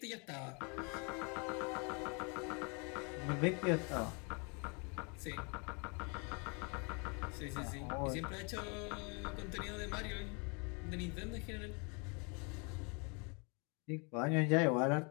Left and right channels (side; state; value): right; quieter; 33.4 dB